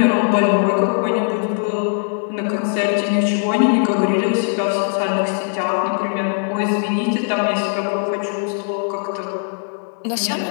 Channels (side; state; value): right; silent; 60 dB below the other